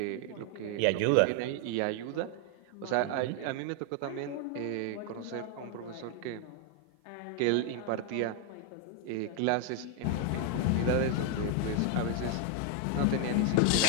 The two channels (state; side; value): different; both; correlation 0.01